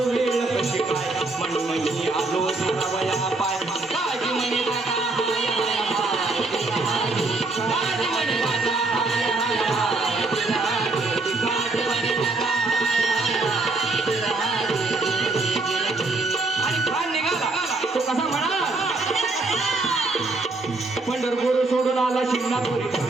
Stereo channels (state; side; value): quieter; left; 3.3 dB